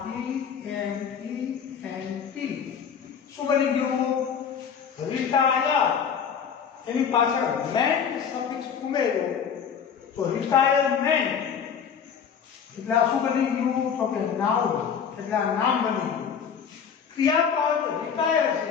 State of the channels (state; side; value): quieter; right; 7.2 dB